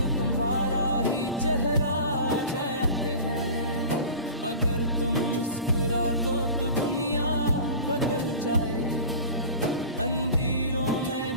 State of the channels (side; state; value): both; inverted; correlation -0.36